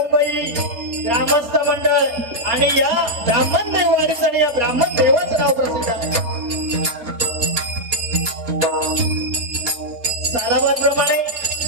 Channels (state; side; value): late; left; 4.2 ms